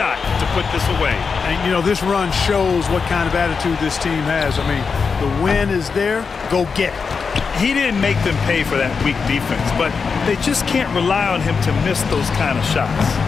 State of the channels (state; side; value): quieter; right; 5.3 dB